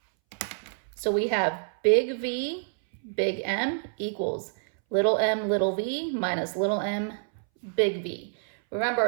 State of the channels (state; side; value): silent; left; 60 dB below the other